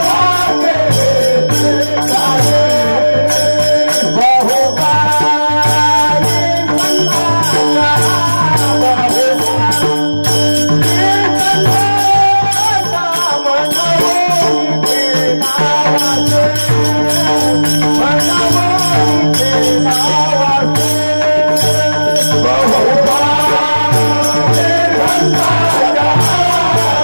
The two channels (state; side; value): inverted; both; correlation -1.00